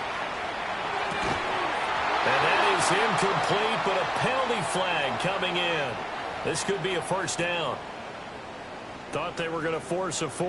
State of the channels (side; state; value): both; identical; correlation 1.00